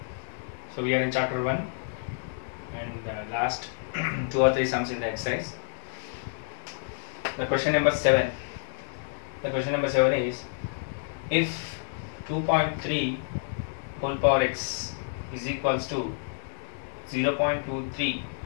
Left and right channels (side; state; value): right; silent; digital silence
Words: So we are in chapter 1 and last 2 or 3 sums in the exercise. The question number 7 is, if 2.3 whole power x is equals to 0.23